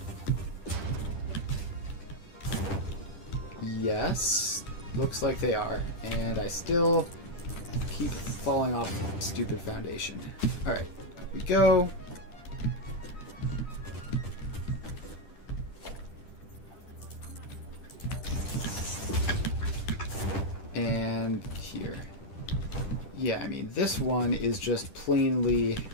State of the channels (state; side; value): late; right; 10 ms